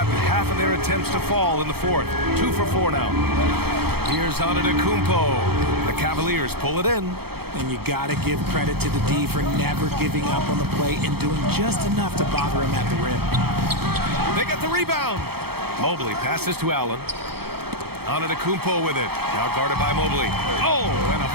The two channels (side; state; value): left; late; 0.96 ms